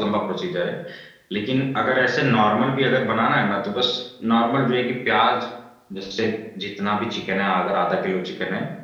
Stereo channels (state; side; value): identical; both; correlation 1.00